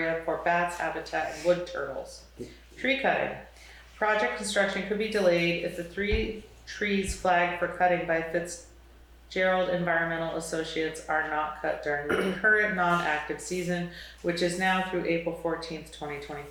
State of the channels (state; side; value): identical; both; correlation 1.00